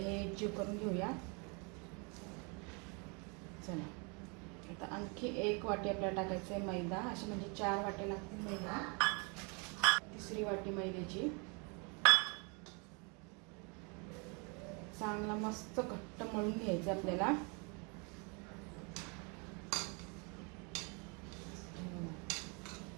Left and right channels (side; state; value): left; quieter; 33.3 dB